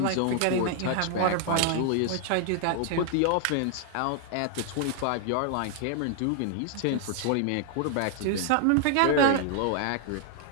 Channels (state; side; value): different; both; correlation 0.00